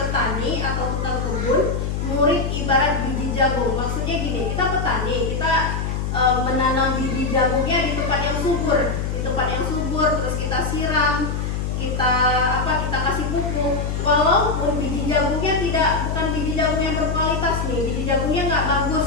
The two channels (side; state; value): left; noise; hum, 2 dB below the sound